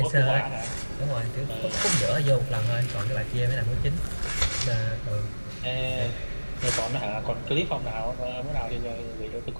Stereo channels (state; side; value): inverted; both; correlation -1.00